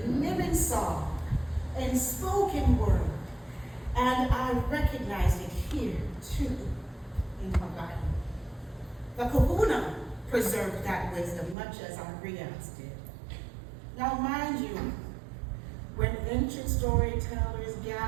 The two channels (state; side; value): drops out; left; at 11.6 s